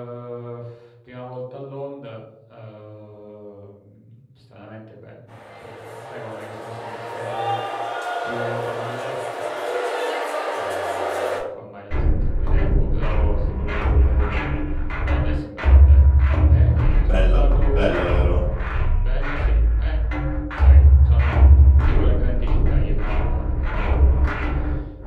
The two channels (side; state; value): both; identical; correlation 1.00